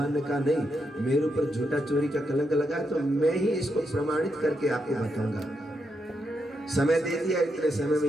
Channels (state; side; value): normal; both; correlation 0.82